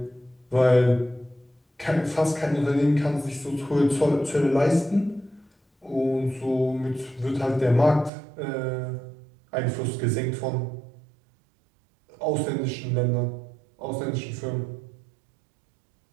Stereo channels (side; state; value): left; drops out; at 8.1 s